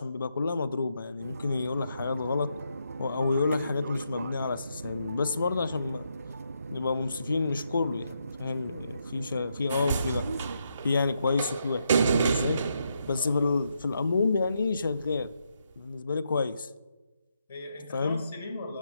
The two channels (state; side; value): inverted; both; correlation -0.80